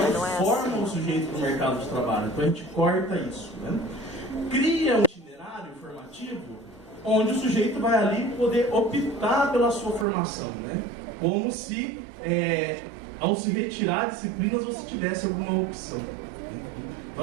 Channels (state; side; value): drops out; left; at 10.1 s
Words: forma o sujeito para o mercado de trabalho. Então a gente corta isso. Né? Cria um itinerário formativo onde o sujeito vai ali poder optar pela sua formação. Né? Como se, ao se retirar disciplinas, você tivesse alguma opção.